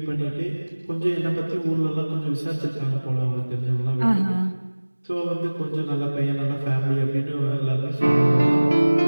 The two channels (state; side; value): inverted; both; correlation -1.00